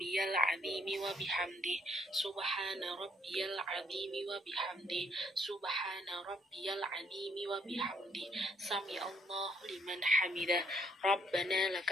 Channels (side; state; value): both; normal; correlation 0.68